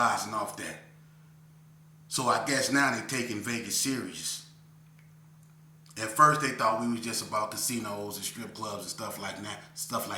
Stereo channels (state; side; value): identical; both; correlation 1.00